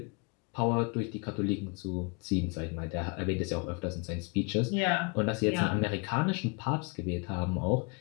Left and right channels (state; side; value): quieter; right; 33.1 dB